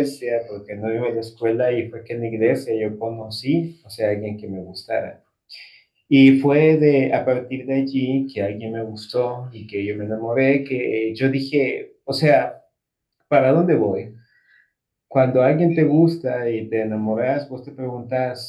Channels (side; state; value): both; identical; correlation 1.00